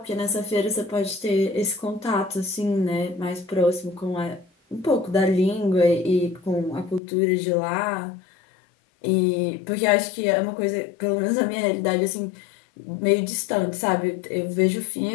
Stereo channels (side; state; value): right; drops out; at 7.0 s